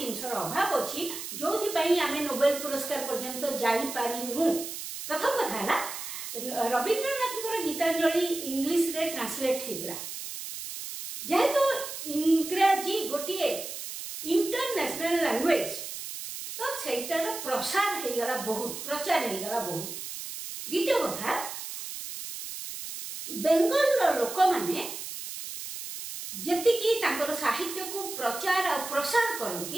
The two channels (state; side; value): noise; right; hiss, 8 dB below the sound